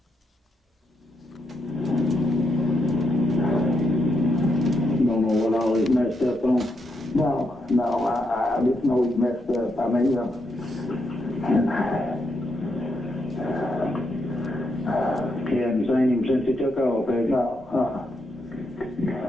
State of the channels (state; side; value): normal; both; correlation 0.81